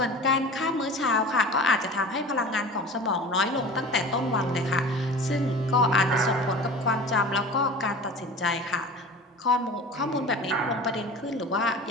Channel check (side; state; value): both; normal; correlation 0.37